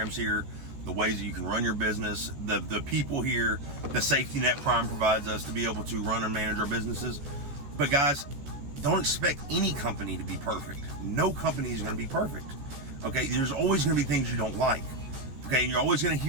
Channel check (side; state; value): left; late; 14 ms